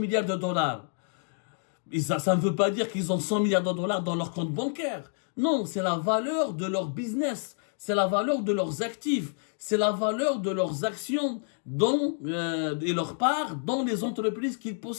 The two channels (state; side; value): silent; right; digital silence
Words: de dollars. Et ça ne veut pas dire qu'ils ont 100 milliards de dollars dans leur compte bancaire. Non, c'est la valeur de leur business. C'est la valeur de leurs actifs. C'est la valeur de leurs actions et leur part dans les entreprises qu'ils